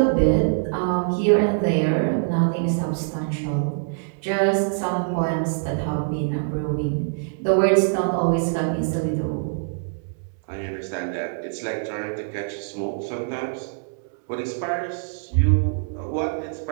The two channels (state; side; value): silent; left; digital silence